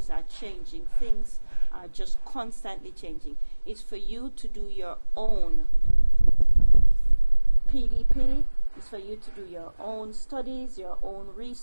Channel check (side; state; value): both; inverted; correlation -1.00